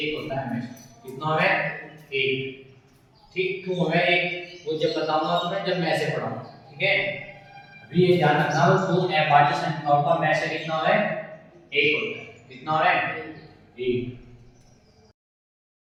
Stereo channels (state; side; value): identical; both; correlation 1.00